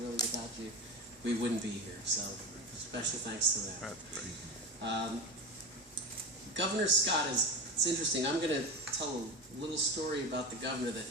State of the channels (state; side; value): normal; both; correlation 0.22